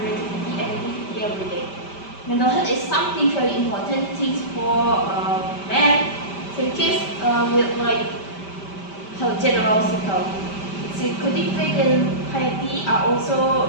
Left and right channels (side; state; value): right; late; 5.1 ms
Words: and activity every day. Mental health is something very important things for men. So in case with like health general cycle, psychotic faith and piety are